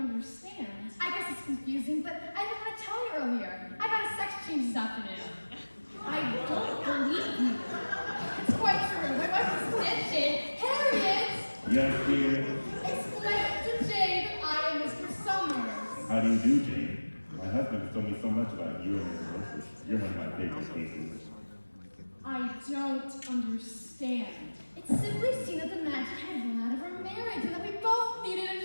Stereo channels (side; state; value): both; inverted; correlation -1.00